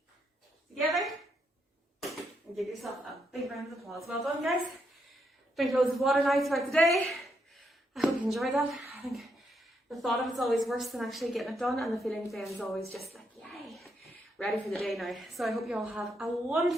Together. And give yourself a big round of applause. Well done, guys. Drink loads of water now throughout the day. I hope you enjoyed that. I think the thought of it's always worse than actually getting it done, and the feeling then is always just like, yay, ready for the day now. So I hope you all have a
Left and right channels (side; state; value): both; normal; correlation 0.78